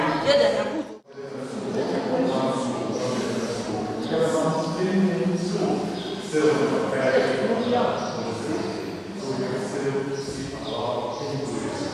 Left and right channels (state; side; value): identical; both; correlation 1.00